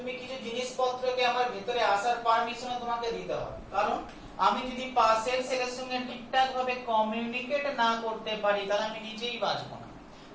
কিছু জিনিসপত্রকে আমার ভিতরে আসার পারমিশন তোমাকে দিতে হবে, কারণ আমি যদি পাশের সেলের সঙ্গে ঠিকঠাক ভাবে কমিউনিকেট না করতে পারি তাহলে আমি নিজেই বাঁচবো না।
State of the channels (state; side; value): identical; both; correlation 1.00